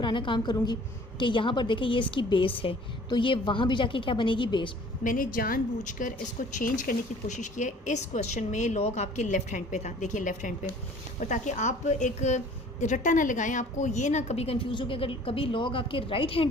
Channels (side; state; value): both; normal; correlation 0.51